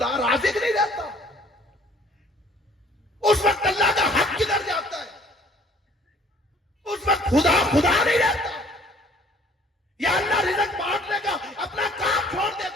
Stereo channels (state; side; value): normal; both; correlation 0.56